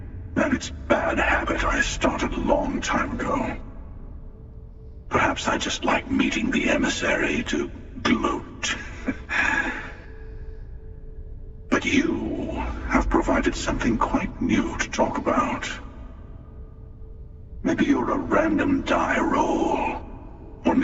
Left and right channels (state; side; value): identical; both; correlation 1.00